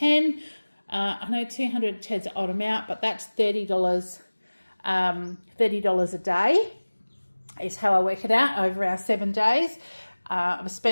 I know 210 is an odd amount, but that's $30. $30 a day is how I work it out over our 7 days. I've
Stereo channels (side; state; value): both; inverted; correlation -1.00